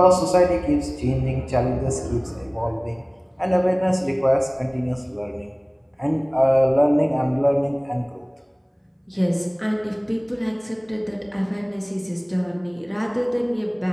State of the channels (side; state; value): both; identical; correlation 1.00